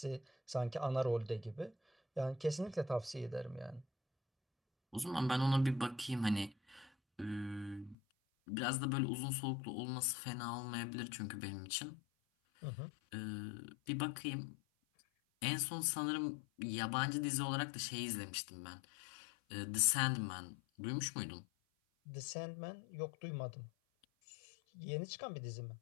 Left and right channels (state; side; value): drops out; right; at 8.0 s